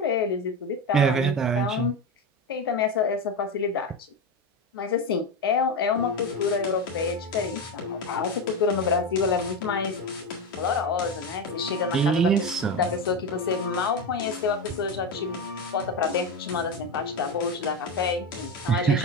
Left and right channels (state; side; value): normal; both; correlation 0.17